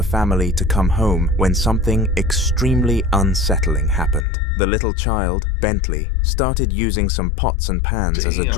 family to come home when something extremely unsettling happened. The little child, Bentley, started using some pots and pans as a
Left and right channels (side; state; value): right; drops out; at 4.2 s